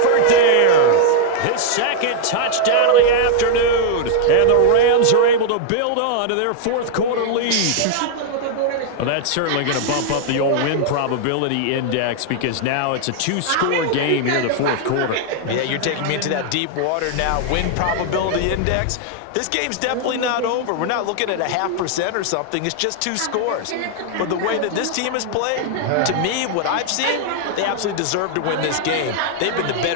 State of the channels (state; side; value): different; both; correlation 0.00